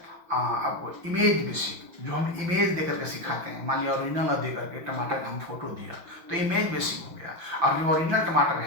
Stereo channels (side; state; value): left; late; 5.9 ms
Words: आपको इमेज बेसिक, जो हम इमेज दे करके सिखाते हैं। मान लिया ओरिजिनल दे करके टमाटर का हम फोटो दिया, तो इमेज बेसिक हो गया, और जो ओरिजिनल टमाटर